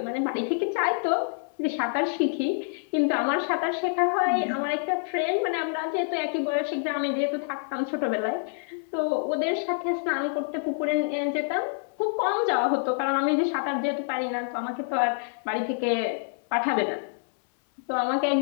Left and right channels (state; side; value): silent; right; 59 dB below the other